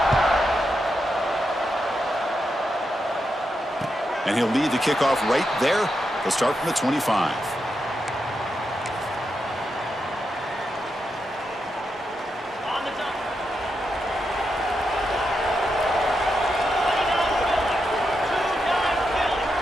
And he'll lead the kickoff right there. He'll start from the 25.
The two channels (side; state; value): both; normal; correlation 0.85